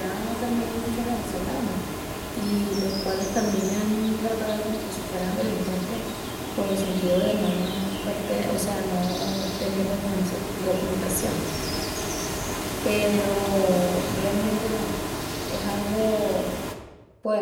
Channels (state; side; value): identical; both; correlation 1.00